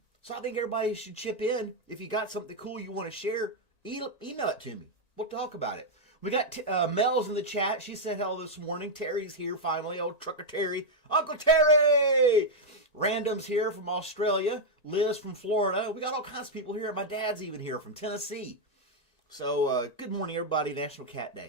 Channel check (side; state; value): right; late; 1.9 ms